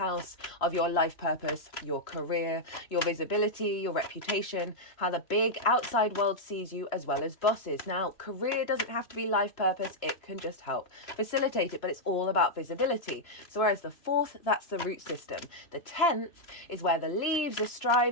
of your life purpose, your career, your visibility, your reputation, how the big outside world sees you, as well as bosses. Now, career doesn't have to be life purpose. It can just help facilitate it, but it's all about visibility. So whereas the 4th, that's the root system. The 10th is where the leaves are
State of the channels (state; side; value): late; right; 3.0 ms